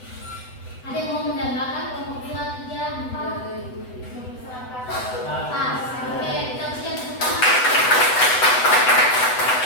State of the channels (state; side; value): late; right; 8.0 ms